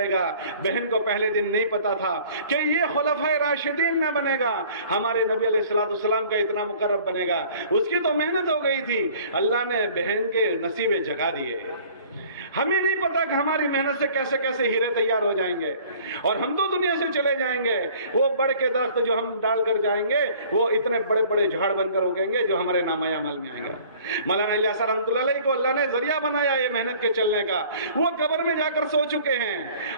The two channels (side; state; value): both; inverted; correlation -0.51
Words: گا۔ بہن کو پہلے دن نہیں پتا تھا کہ یہ خلفائے راشدین میں بنے گا, ہمارے نبی علیہ السلام کا اتنا مقرب بنے گا. اس کی تو محنت ہو گئی تھی, اللہ نے بہن کے نصیبے جگا دیے. ہمیں نہیں پتا کہ ہماری محنت سے کیسے کیسے ہیرے تیار ہو جائیں گے, اور ہم تو دنیا سے چلے جائیں گے. وہ بڑ کے درخت جو ہم ڈال کر جائیں گے وہ اتنے بڑے بڑے جھاڑ بن کر اگیں گے جو ہمارے نامہ اعمال میں آئیں گے. مولانا الیاس رحمۃ اللہ علیہ کو اللہ نے ذریعہ بنایا یہ محنت کے چلنے کا. وہ قبر میں جا کر سو چکے ہیں,